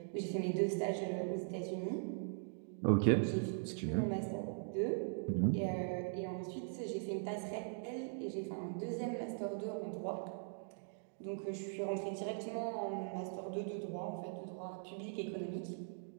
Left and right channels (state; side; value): silent; left; digital silence